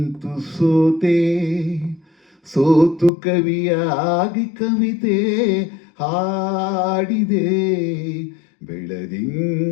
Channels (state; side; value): drops out; right; at 3.1 s